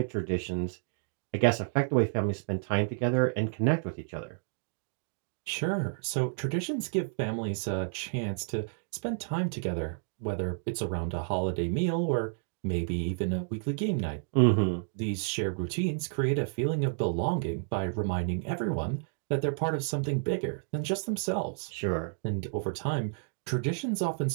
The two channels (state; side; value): silent; left; digital silence